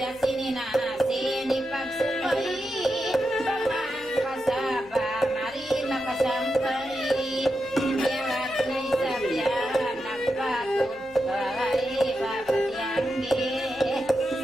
sininasin ipagsupay pamang kasaba marina kasampay yarat na isabyan nagpatod patiyay papatiyanggi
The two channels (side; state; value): left; noise; hum, 26 dB below the sound